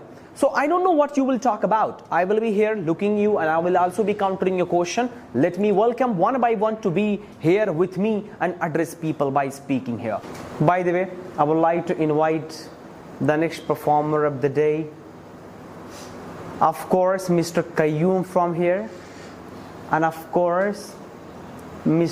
So I don't know what you will talk about. I will be here looking you and I will also be countering your question. Let me welcome one by one to be here with me and address people by speaking here. By the way, I would like to invite the next performer of the day. Of course, Mr. Qayyum from here. And of course,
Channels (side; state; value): both; identical; correlation 1.00